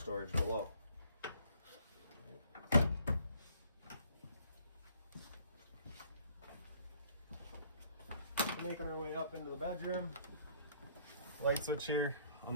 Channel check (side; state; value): both; inverted; correlation -0.61